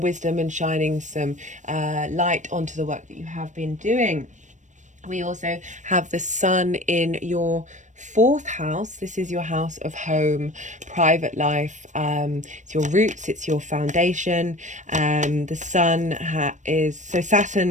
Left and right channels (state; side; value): late; left; 0.35 ms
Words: and shining some light onto the work that you have been doing. We also have the sun in your 4th house. This is your house of home, private life. It's your roots, it's your foundation. The sun so